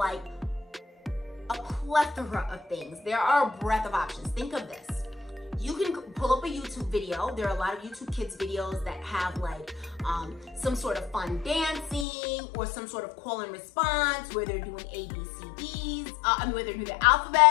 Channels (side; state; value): right; drops out; at 12.1 s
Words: a plethora of things. There are a breadth of options. Think of this. You can pull up a YouTube video. There are a lot of YouTube Kids videos that have like some sort of fun dancing or some sort of call and response where they're doing ABCDs, where they're doing the